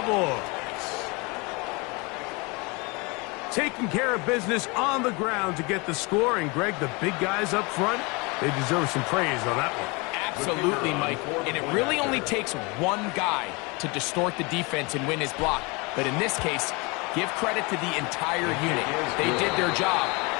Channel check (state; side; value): quieter; right; 27.8 dB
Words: Taking care of business on the ground to get the score. And, Greg, the big guys up front, they deserve some praise on that one. Absolutely, Mike. And it really only takes one guy to distort the defense and win his block. But in this case, give credit to the entire unit. They did their job,